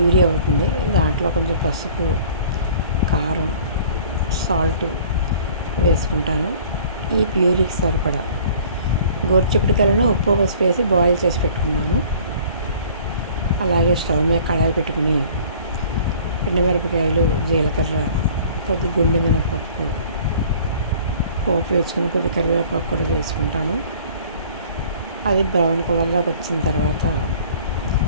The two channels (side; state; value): both; inverted; correlation -0.50